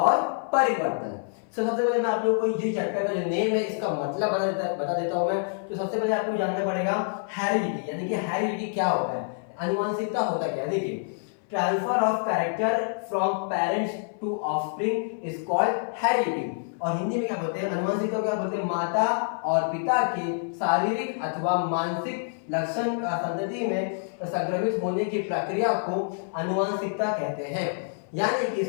परिवर्तन। सबसे पहले मैं आप लोगों को जो चैप्टर का जो नेम है इसका मतलब बता देता हूँ मैं। तो सबसे पहले आपको जानना पड़ेगा हेरिडिटी, यानी कि हेरिडिटी क्या होता है, अनुवांशिकता होता क्या है। देखिए, transfer of character from parents to offspring is called heredity. और हिंदी में क्या बोलते हैं, अनुवांशिकता को क्या बोलते हैं, माता और पिता के शारीरिक अथवा मानसिक लक्षण संतति में संक्रमित होने की प्रक्रिया को अनुवांशिकता कहते हैं। यानी कि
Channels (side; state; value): right; silent; 56 dB below the other